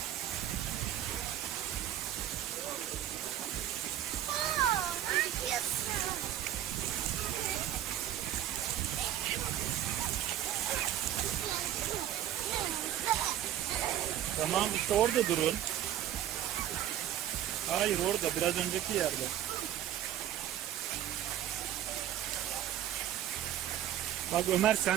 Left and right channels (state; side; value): quieter; left; 11.6 dB